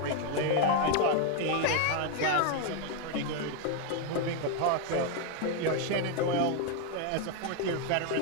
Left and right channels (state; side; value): different; both; correlation 0.01